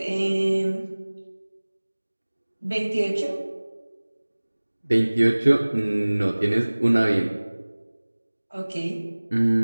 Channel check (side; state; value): both; inverted; correlation -1.00